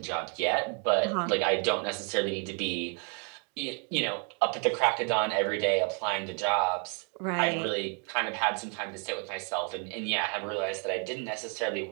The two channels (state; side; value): quieter; left; 38.2 dB